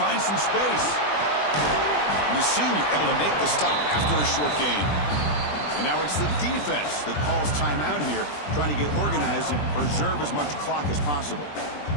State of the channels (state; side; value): late; right; 20 ms